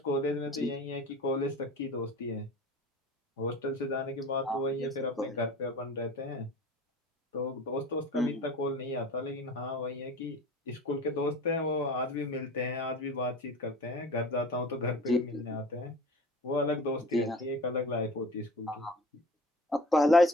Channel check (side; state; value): both; normal; correlation 0.40